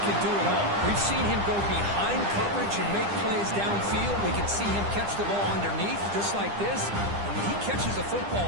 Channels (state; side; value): late; left; 9.9 ms